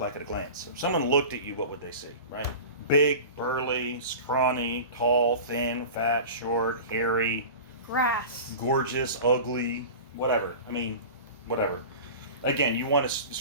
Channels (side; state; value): both; inverted; correlation -0.35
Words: like at a glance? If someone looked at you, what would they see, right? Big, burly, scrawny, tall, thin, fat, short, hairy, Grass. gorgeous, ugly, whatever. I mean, whatever. Again, you want to